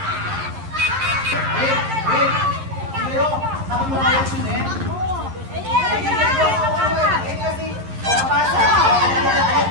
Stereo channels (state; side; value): late; left; 11 ms